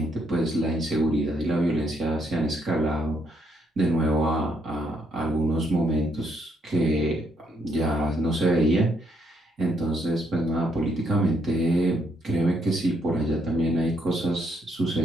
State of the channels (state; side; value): normal; both; correlation 0.73